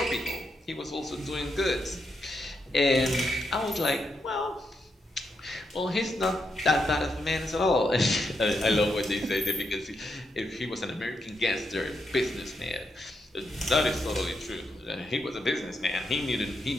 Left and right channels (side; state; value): both; normal; correlation 0.82